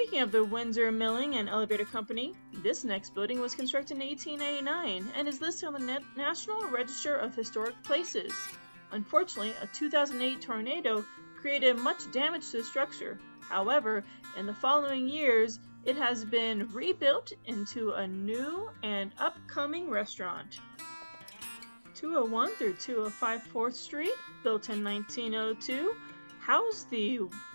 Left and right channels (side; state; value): both; inverted; correlation -1.00